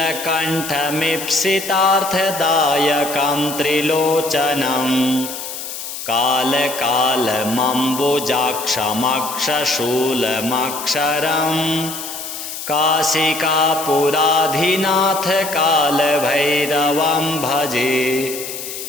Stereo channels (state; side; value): noise; left; hiss, 8 dB below the sound